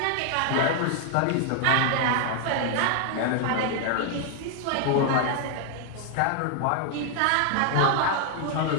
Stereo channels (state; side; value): different; both; correlation 0.00